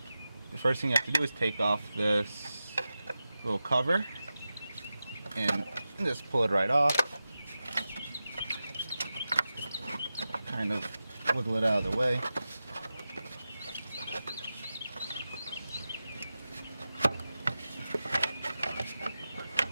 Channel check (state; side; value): inverted; both; correlation -0.93